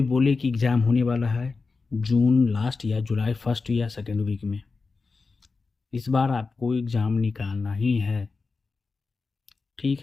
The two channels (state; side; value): quieter; right; 4.2 dB